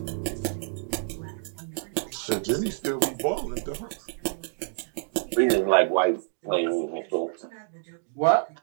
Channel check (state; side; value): silent; left; digital silence